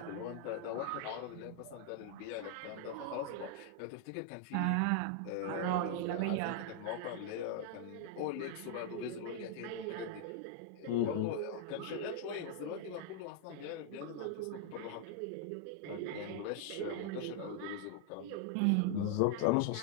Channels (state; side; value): different; both; correlation -0.01